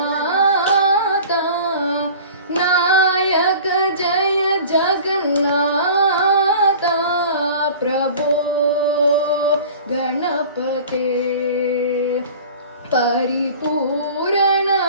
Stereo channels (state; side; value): inverted; both; correlation -0.42